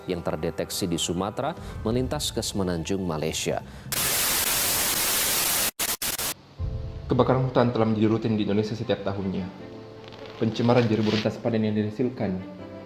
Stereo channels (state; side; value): identical; both; correlation 1.00